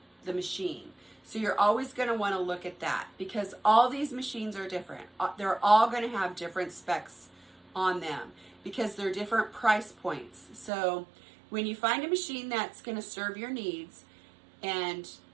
the machine. So you're always going to want to look at that because all these machines are different. They're all going to have different specs on them because they're different price points. So when you find a machine that's going to serve your needs and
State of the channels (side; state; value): left; drops out; at 10.7 s